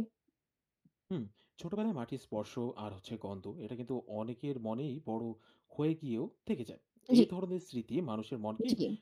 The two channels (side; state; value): both; identical; correlation 1.00